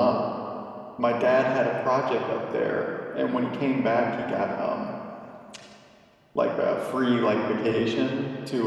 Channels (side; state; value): both; identical; correlation 1.00